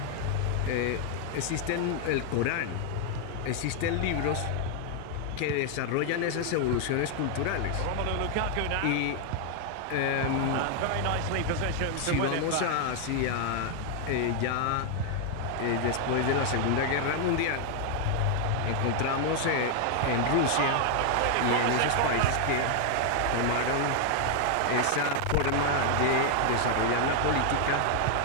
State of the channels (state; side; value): different; both; correlation 0.00